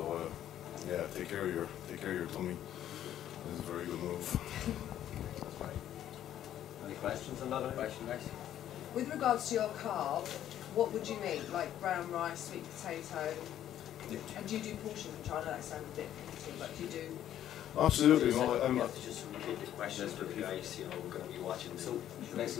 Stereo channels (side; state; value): right; quieter; 11.4 dB